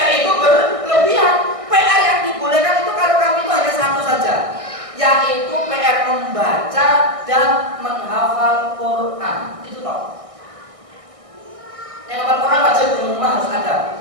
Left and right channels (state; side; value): late; left; 1.6 ms